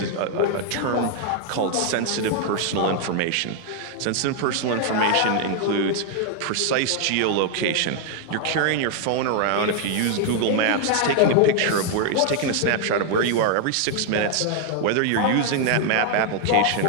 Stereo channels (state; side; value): different; both; correlation 0.00